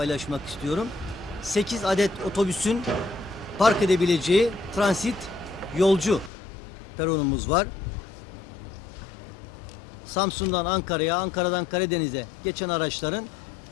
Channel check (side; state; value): right; drops out; at 6.3 s